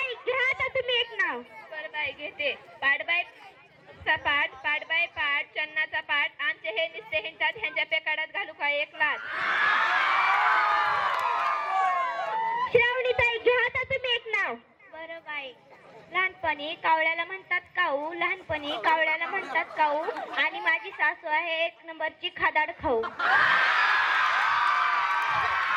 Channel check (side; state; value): both; identical; correlation 1.00